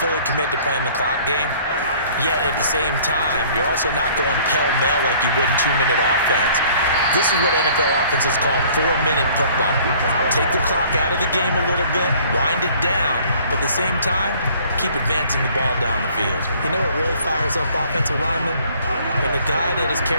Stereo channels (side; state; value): both; inverted; correlation -0.55